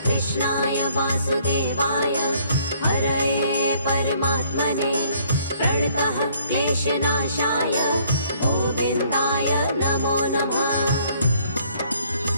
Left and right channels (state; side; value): inverted; both; correlation -0.62